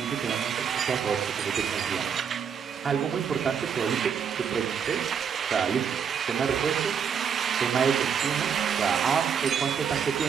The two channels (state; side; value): quieter; left; 7.3 dB